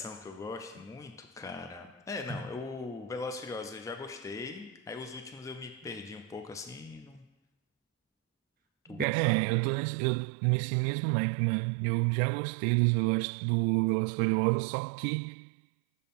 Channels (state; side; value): drops out; left; at 9.1 s